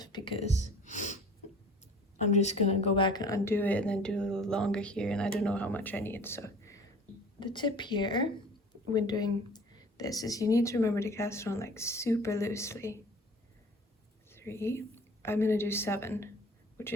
because I'm just gonna go back and undo it and then do a little longer here, and I don't know how much I need. So the tip here when doing this is you need to remember to cast it on like super loosely. 3, I'm gonna do 7, which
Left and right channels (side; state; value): both; normal; correlation 0.46